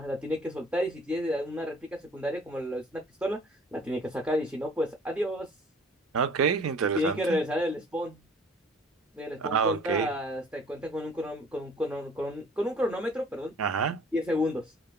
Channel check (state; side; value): normal; both; correlation 0.51